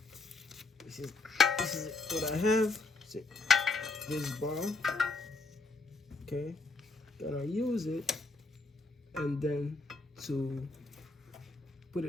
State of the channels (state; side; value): quieter; right; 3.6 dB